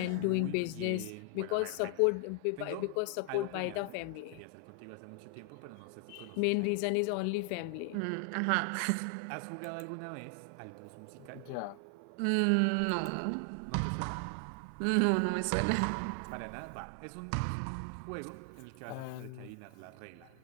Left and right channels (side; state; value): both; different; correlation 0.00